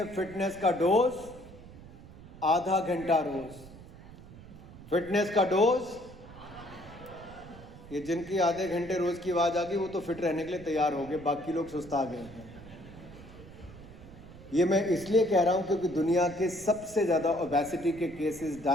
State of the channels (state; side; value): noise; right; rumble, 18 dB below the sound